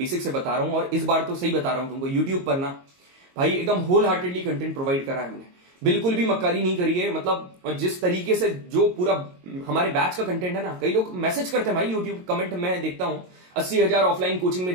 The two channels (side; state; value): left; late; 22 ms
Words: से बता रहा हूं, और इस बार तो सही बता रहा हूं तुमको। यूट्यूब पर ना भाई एकदम होल हार्टेडली कंटेंट प्रोवाइड करा है हमने, बिल्कुल भी मक्कारी नहीं करी है, मतलब जिस तरीके से जो पूरा हमारे बैच का कंटेंट है ना, कई लोग मैसेज करते हैं भाई यूट्यूब कमेंट में देखता हूं, 80,000 ऑफलाइन कोचिंग में